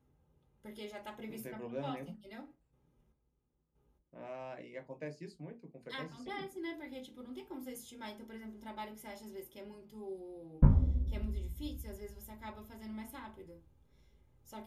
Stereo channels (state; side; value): identical; both; correlation 1.00